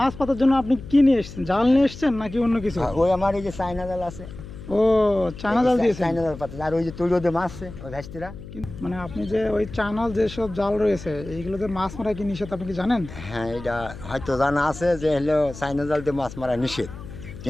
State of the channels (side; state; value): left; noise; hum, 13 dB below the sound